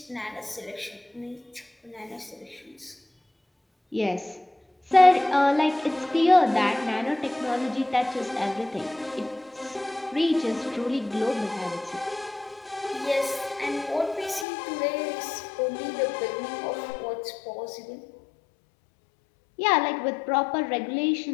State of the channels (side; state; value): right; drops out; at 14.5 s